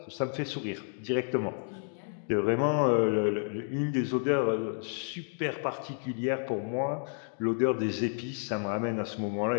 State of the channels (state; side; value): silent; right; 57 dB below the other